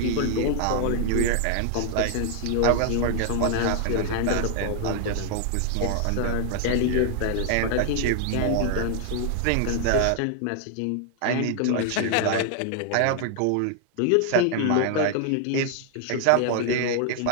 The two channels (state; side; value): different; both; correlation 0.00